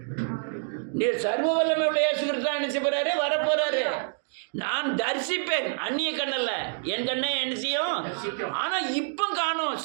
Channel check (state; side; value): silent; left; digital silence